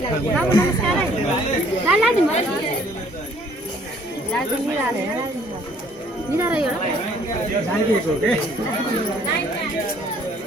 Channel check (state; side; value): normal; both; correlation 0.60